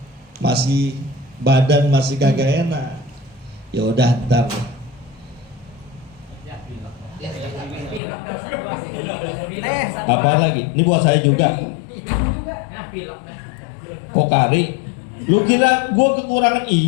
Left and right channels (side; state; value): right; drops out; at 8.0 s